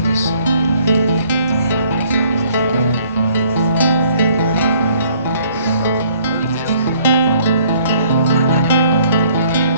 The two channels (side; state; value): both; inverted; correlation -0.61